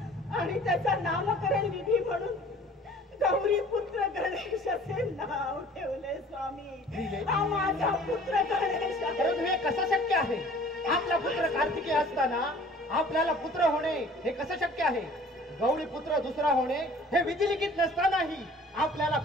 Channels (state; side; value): normal; both; correlation 0.50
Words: आणि त्याचा नामकरण विधी म्हणून गौरी पुत्र गणेश असे नाव ठेवले स्वामी. हा माझा पुत्र गणेश आहे. परंतु हे कसं शक्य आहे? आपला पुत्र कार्तिकी असताना आपल्याला पुत्र होणे हे कसं शक्य आहे? गौरी पुत्र दुसरा होणे हे विधिलिखित नसतानाही आपल्याला